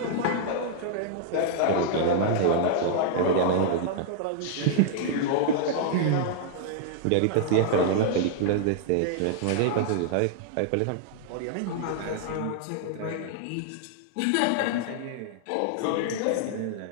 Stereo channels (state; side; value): different; both; correlation -0.01